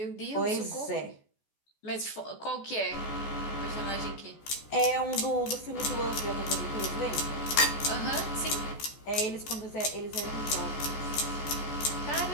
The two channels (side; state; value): right; late; 14 ms